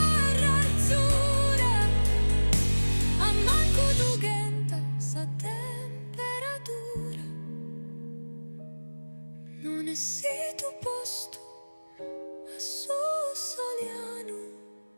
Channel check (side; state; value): both; inverted; correlation -1.00